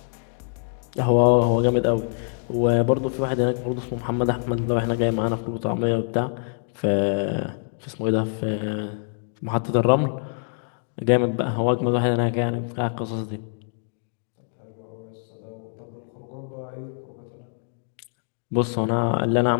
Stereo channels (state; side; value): silent; right; digital silence